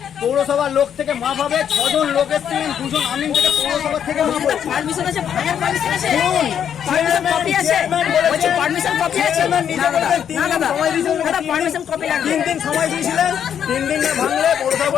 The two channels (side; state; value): right; quieter; 8.8 dB